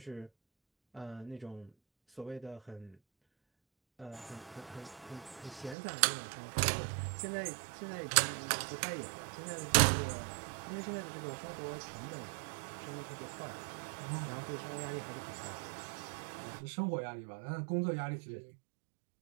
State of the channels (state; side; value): drops out; left; at 5.8 s